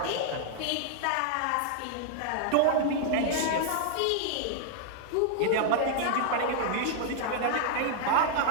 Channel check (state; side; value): different; both; correlation -0.01